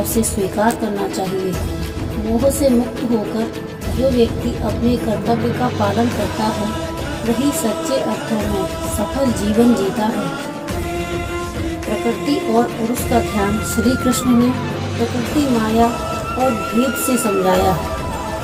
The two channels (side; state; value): both; identical; correlation 1.00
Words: से स्वीकार करना चाहिए। मोह से मुक्त होकर जो व्यक्ति अपने कर्तव्य का पालन करता है, वही सच्चे अर्थों में सफल जीवन जीता है। प्रकृति और पुरुष का ध्यान। श्री कृष्ण ने प्रकृति, माया और भेद से समझाया।